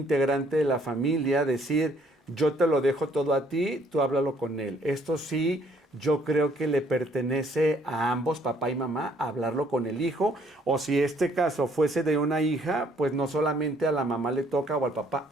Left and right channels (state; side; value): normal; both; correlation 0.64